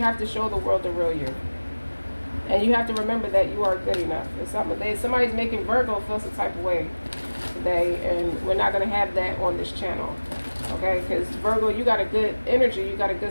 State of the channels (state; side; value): inverted; both; correlation -1.00